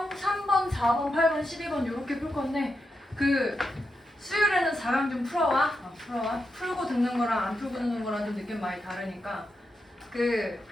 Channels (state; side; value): normal; both; correlation 0.86